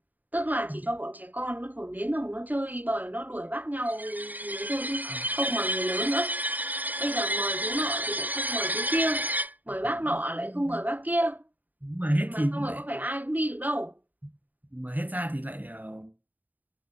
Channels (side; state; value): left; late; 0.083 ms